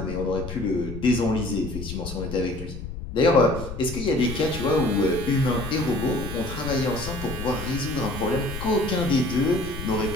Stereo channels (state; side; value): noise; left; rumble, 9 dB below the sound